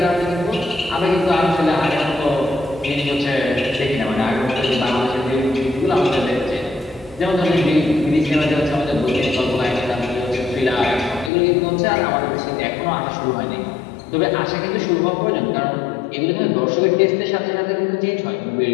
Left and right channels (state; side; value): drops out; right; at 11.3 s